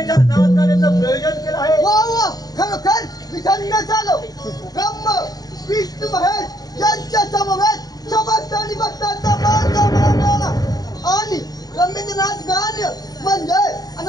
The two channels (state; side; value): late; right; 0.18 ms